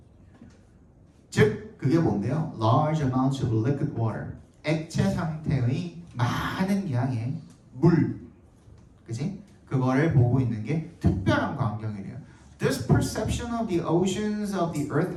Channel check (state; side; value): identical; both; correlation 1.00